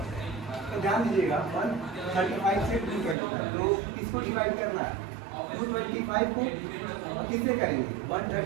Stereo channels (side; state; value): left; drops out; at 3.2 s